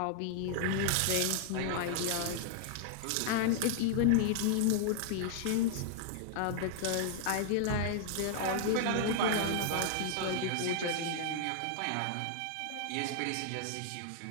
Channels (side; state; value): both; different; correlation -0.01